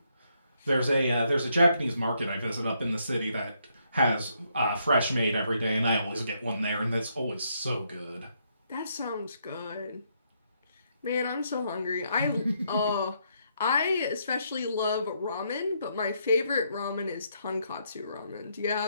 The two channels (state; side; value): inverted; both; correlation -0.75